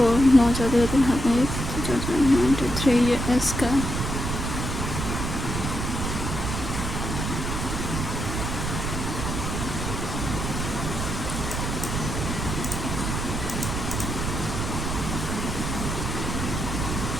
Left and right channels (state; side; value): noise; right; rumble, 3 dB below the sound